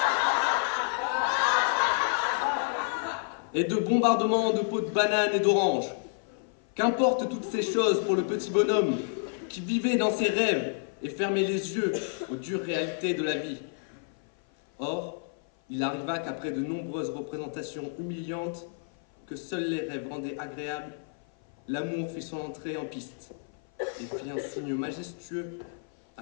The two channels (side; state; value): right; silent; 55 dB below the other